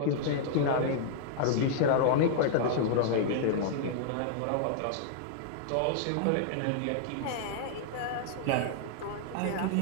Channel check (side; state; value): both; different; correlation -0.01